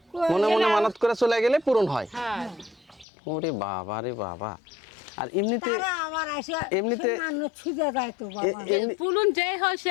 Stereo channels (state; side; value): drops out; right; at 3.1 s